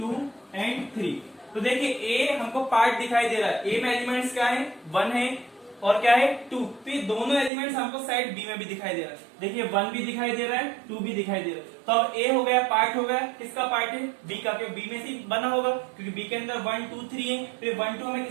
एंड 3। तो देखिए ए हमको पार्ट दिखाई दे रहा है, ए में एलिमेंट्स क्या है 1 है और क्या है 2, तो ये दोनों एलिमेंट्स हमको साइड बी में भी दिखाई दे रहा है। देखिए 1 भी दिखाई दे रहा है 2 भी दिखाई दे रहा है। तो अब ए हो गया पार्ट हो गया, किसका पार्ट है बी का, क्योंकि बी में से बना होगा, क्योंकि बी के अंदर 1 2 3 है, तो 1 2 हमें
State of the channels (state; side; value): drops out; left; at 7.5 s